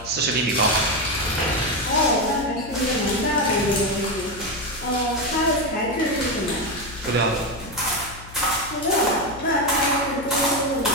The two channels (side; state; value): left; noise; hum, 16 dB below the sound